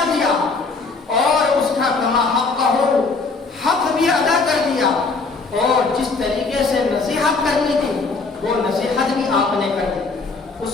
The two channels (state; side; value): quieter; right; 4.1 dB